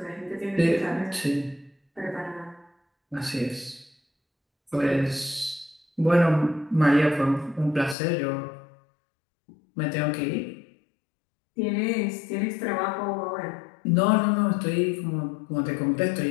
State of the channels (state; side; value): drops out; right; at 8.0 s